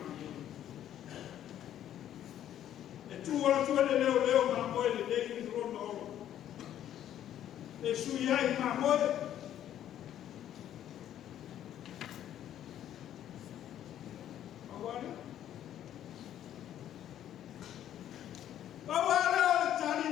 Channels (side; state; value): right; quieter; 11.1 dB